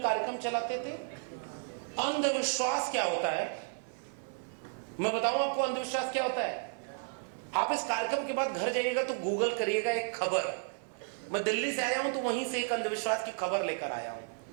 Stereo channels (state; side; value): silent; left; 56 dB below the other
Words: कार्यक्रम चलाते थे। अंधविश्वास क्या होता है मैं बताऊं आपको। अंधविश्वास क्या होता है? आप इस कार्यक्रम के बाद घर जाइएगा तो गूगल करिएगा एक खबर। मैं दिल्ली से आया हूं तो वहीं से एक अंधविश्वास की खबर लेकर आया हूं।